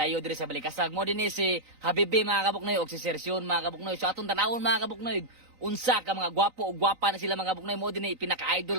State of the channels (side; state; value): left; late; 3.9 ms